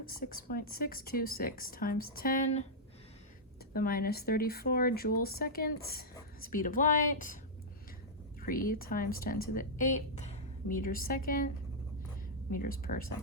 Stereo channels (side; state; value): both; normal; correlation -0.08